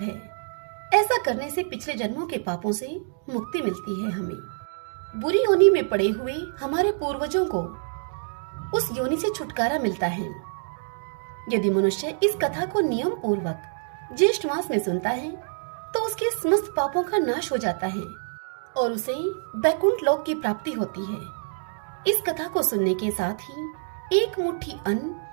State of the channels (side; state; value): left; silent; digital silence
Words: है। ऐसा करने से पिछले जन्मों के पापों से मुक्ति मिलती है। हमें बुरी योनि में पड़े हुए हमारे पूर्वजों को उस योनि से छुटकारा मिलता है। यदि मनुष्य इस कथा को नियम पूर्वक ज्येष्ठ मास में सुनता है तो उसके समस्त पापों का नाश हो जाता है और उसे बैकुंठ लोक की प्राप्ति होती है। इस कथा को सुनने के साथ ही एक मुट्ठी अन्न